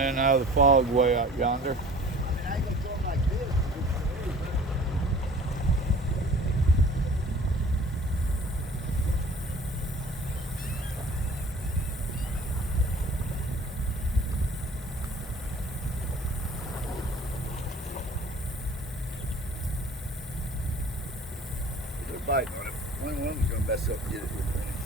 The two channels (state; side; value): normal; both; correlation 0.47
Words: out of the fog way out yonder. I mean, I ain't gonna throw them like this. They're biting on it. One of them's gonna mess up and get it here in